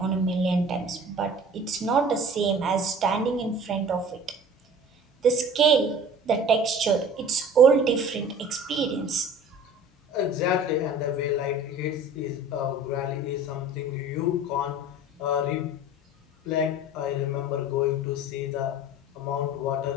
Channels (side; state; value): both; normal; correlation 0.43